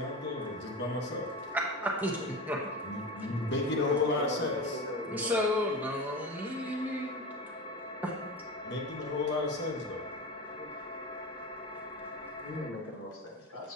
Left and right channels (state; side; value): normal; both; correlation 0.26